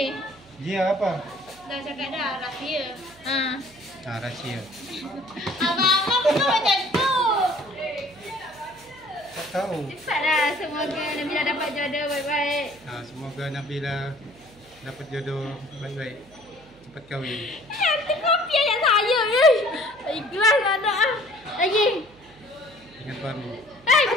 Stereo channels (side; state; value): right; noise; hum, 26 dB below the sound